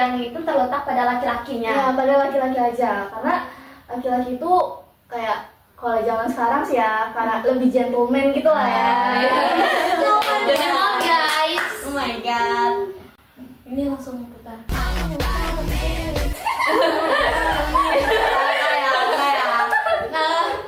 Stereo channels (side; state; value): both; identical; correlation 1.00